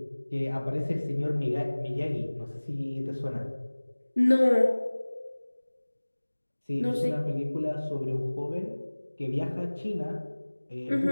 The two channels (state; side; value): inverted; both; correlation -1.00